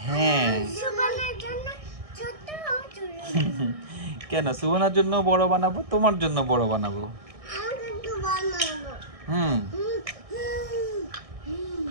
হ্যাঁ। কেন, সুবনার জন্য বড় বানাবো, তোমার জন্য বড় বানাবো।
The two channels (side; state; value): left; late; 1.6 ms